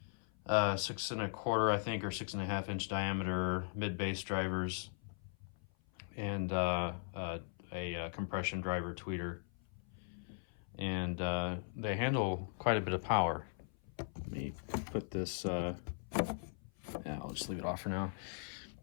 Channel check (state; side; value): silent; right; 52 dB below the other